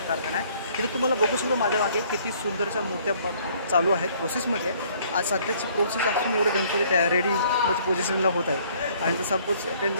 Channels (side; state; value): both; inverted; correlation -0.60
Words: कारखाना आहे. तिथे तुम्हाला बघू शकतो माझ्या मागे किती सुंदरशा मूर्त्या चालू आहेत प्रोसेसमध्ये. आज सध्याची प्रोसेस असून एवढे गणपती तयार रेडी म्हणजे पोझिशनला होत आहे आणि जर सपोज